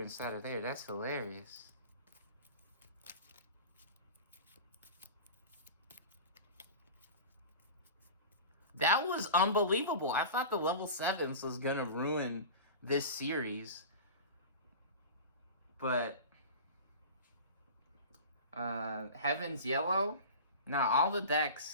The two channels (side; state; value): both; inverted; correlation -0.33